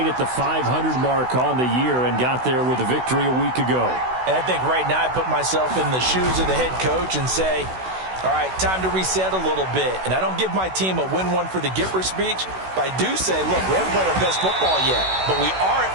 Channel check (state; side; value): late; left; 16 ms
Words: at the 500 mark on the year and got there with a victory a week ago. And I think right now I put myself in the shoes of the head coach and say, all right, time to reset a little bit. And I don't give my team a win one for the Gipper speech, but I do say, look, we haven't played our best football yet, but we are